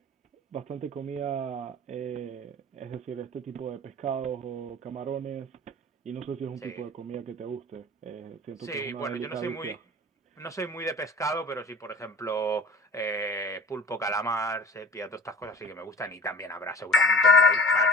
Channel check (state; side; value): normal; both; correlation 0.44